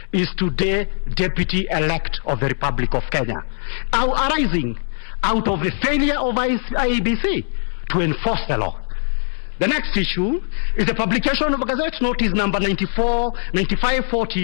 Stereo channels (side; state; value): right; silent; 61 dB below the other